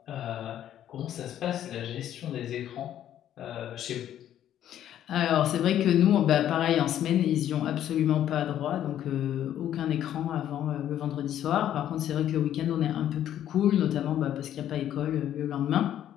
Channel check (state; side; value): quieter; right; 11.2 dB